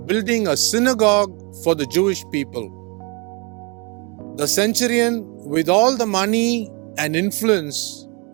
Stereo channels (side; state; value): left; quieter; 31.4 dB